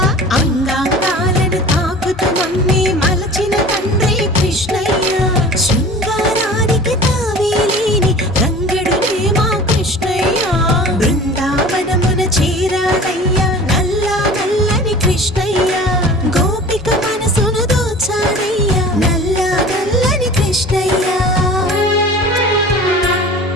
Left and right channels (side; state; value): both; normal; correlation 0.41